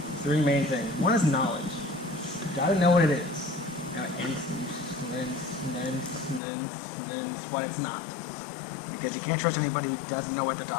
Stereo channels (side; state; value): right; drops out; at 6.4 s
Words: three main things. One is knowledge. You got to know what it is. And what it's not. because you can't trust anybody who doesn't know what they're